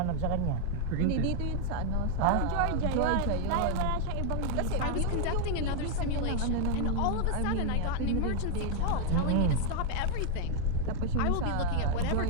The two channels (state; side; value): different; both; correlation 0.00